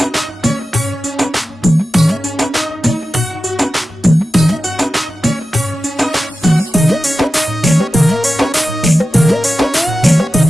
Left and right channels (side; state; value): both; normal; correlation 0.93